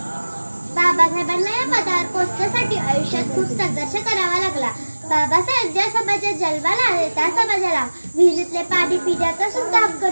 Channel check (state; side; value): inverted; both; correlation -1.00